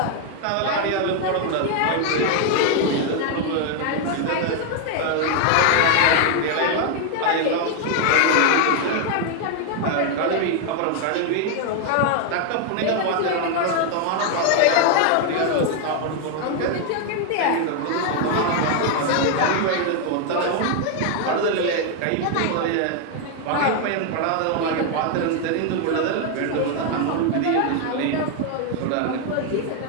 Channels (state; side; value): different; both; correlation 0.00